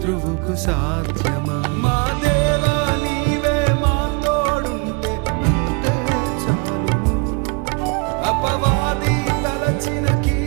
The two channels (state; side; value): quieter; left; 31.4 dB